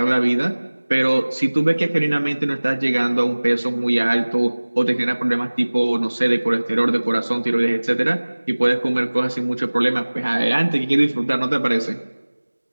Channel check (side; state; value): both; inverted; correlation -1.00